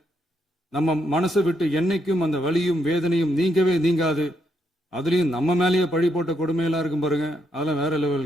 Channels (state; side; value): normal; both; correlation 0.78